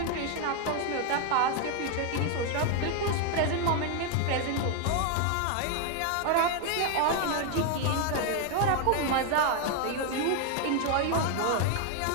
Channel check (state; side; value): different; both; correlation 0.01